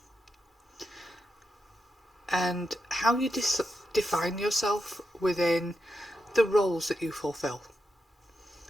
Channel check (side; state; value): both; normal; correlation 0.87